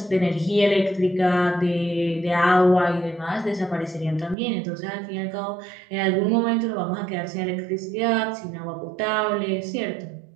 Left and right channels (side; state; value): left; drops out; at 4.4 s